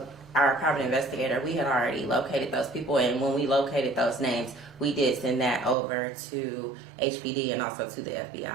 our private investigator, we had already located those people, and when we located those names, we did send that over to HPD and also to the FBI.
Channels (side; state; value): left; drops out; at 5.8 s